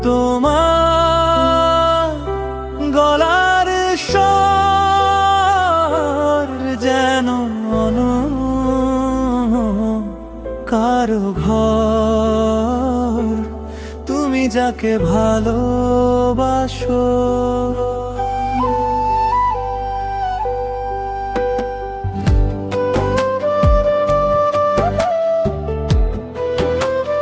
তোমার গলার স্বর যেন কারো ঘর। তুমি যাকে ভালোবাসো,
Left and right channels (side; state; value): both; identical; correlation 1.00